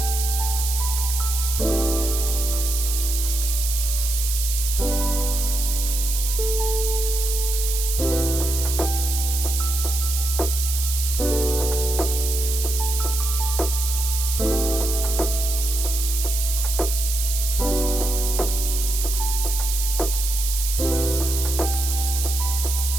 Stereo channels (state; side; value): noise; right; hiss, 3 dB below the sound